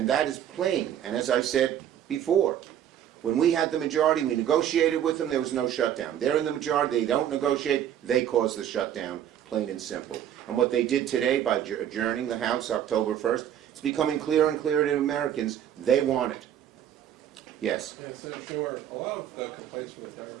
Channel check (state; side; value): quieter; left; 10.3 dB